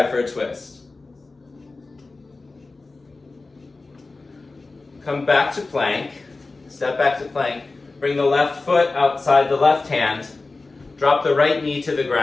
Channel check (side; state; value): right; quieter; 3.6 dB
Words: for a twist. Come back to plank, step back to plank, bring the left foot outside the left hand, drop the right knee to the